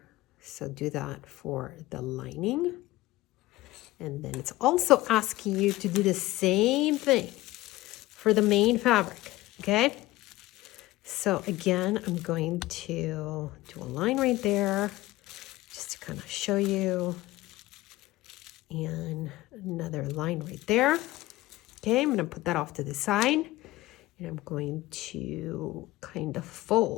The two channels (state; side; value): quieter; right; 18.1 dB